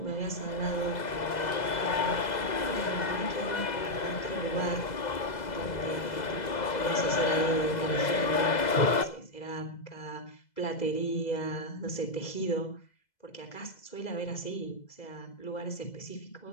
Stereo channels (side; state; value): right; late; 2.0 ms